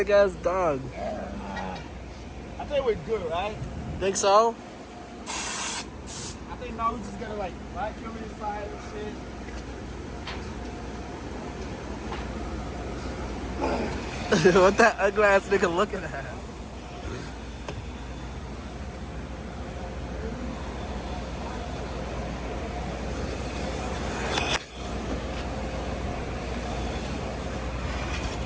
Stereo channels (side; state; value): both; identical; correlation 1.00